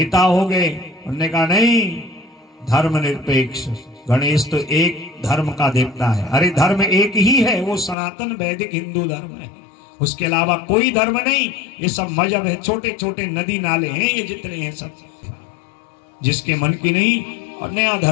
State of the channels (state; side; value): drops out; right; at 8.0 s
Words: हो गए, उन्होंने कहा नहीं धर्मनिरपेक्ष, गणेश तो एक धर्म का देवता है। अरे धर्म एक ही है, वो सनातन वैदिक हिंदू धर्म है, उसके अलावा कोई धर्म नहीं। ये सब मजहब है, छोटे छोटे नदी नाले हैं ये जितने हैं सब, जिसके मन की नहीं और नया